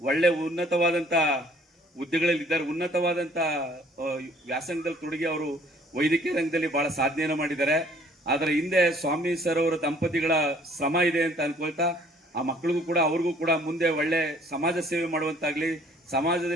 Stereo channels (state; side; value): normal; both; correlation 0.58